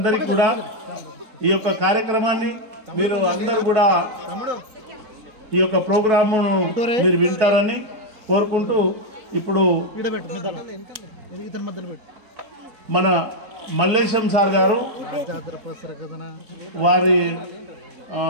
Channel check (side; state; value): left; late; 4.6 ms